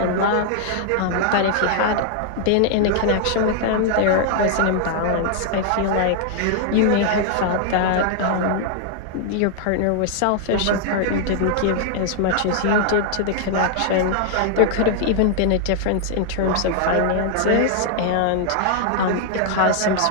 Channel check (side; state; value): both; different; correlation 0.00